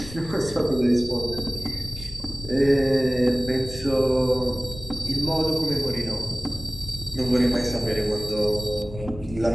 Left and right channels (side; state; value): left; noise; rumble, 14 dB below the sound